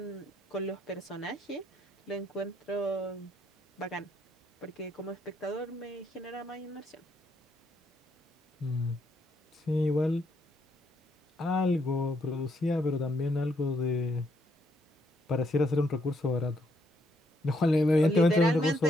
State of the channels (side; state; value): both; normal; correlation 0.74